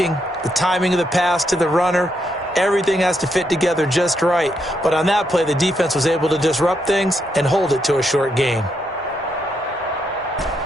the timing of the pass to the runner, everything has to fit together just right. But on that play, the defense was able to disrupt things and hold it to a short gain.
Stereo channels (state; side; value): normal; both; correlation 0.79